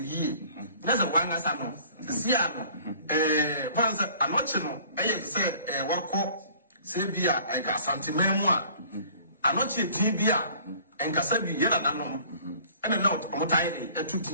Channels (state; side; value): inverted; both; correlation -0.52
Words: ye. There's a one as I know. See, I'm not say, Wako, Sabia, and Casantimemua. I'm not a Tibia, and Casabi, Yana, and a note on tidy, a